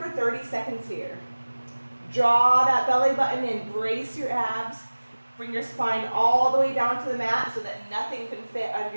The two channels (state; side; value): inverted; both; correlation -1.00